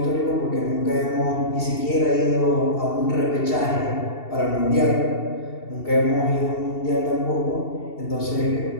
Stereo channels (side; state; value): right; late; 2.7 ms